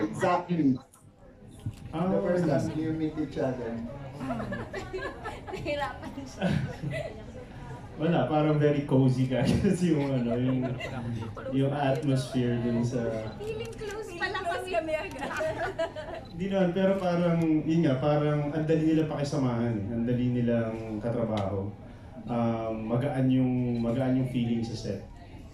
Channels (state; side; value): identical; both; correlation 1.00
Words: exactly? The first time you meet each other. Wala, parang very cozy ka kasi yung atmosphere dun sa... Feeling close pala kami agad. Hindi naman, pero parang, yun nga, parang ang dali nilang pakisamahan, ang dali nilang katrabaho. Magaan yung feeling sa set.